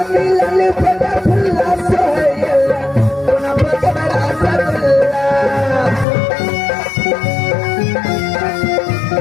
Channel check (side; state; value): right; drops out; at 6.1 s